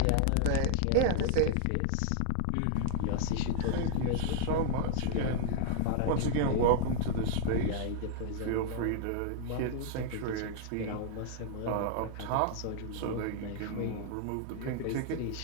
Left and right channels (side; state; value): both; different; correlation -0.01